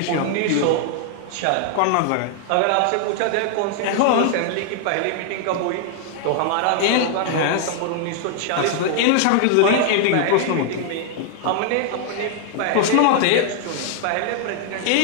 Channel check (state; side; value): different; both; correlation 0.00